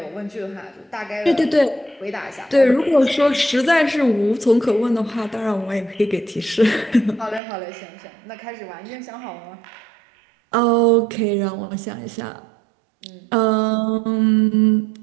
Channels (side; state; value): left; drops out; at 7.4 s